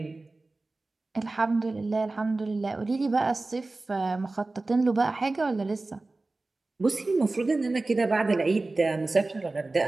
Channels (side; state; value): left; quieter; 3.2 dB